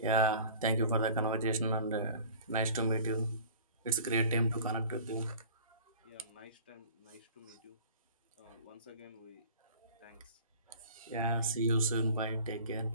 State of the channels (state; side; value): inverted; both; correlation -0.44